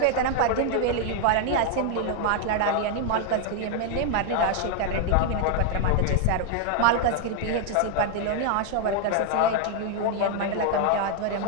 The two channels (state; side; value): different; both; correlation 0.00